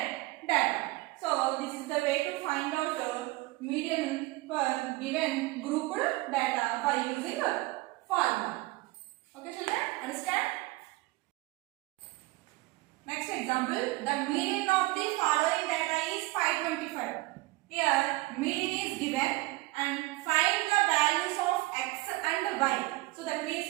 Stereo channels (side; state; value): left; quieter; 21.1 dB